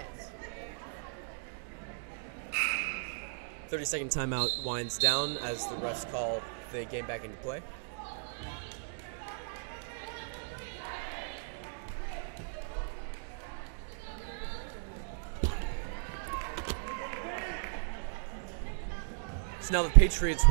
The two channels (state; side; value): silent; left; digital silence